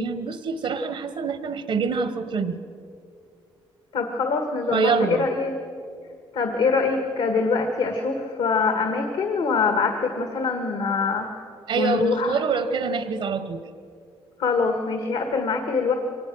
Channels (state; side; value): normal; both; correlation 0.46